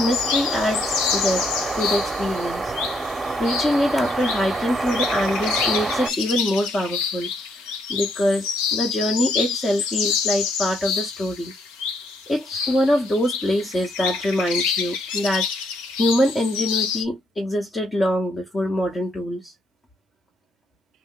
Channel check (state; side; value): normal; both; correlation 0.73